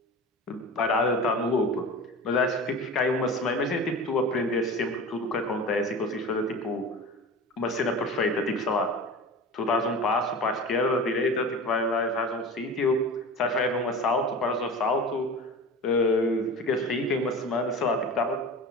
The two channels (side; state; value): both; normal; correlation 0.33